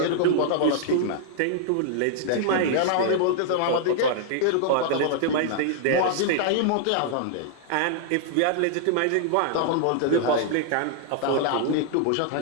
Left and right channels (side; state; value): both; different; correlation -0.01